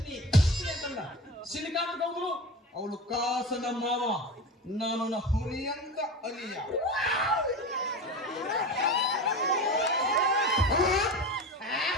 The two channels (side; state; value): both; normal; correlation 0.28